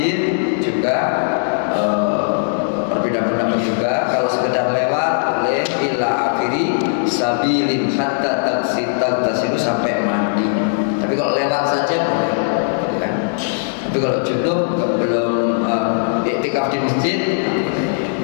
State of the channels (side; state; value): right; silent; 60 dB below the other